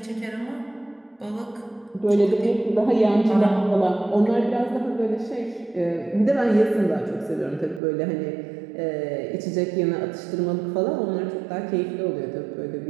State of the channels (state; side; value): drops out; left; at 7.8 s